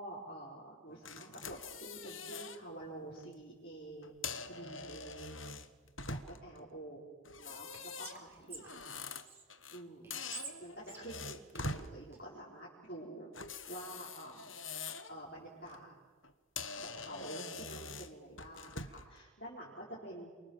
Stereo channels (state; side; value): normal; both; correlation 0.11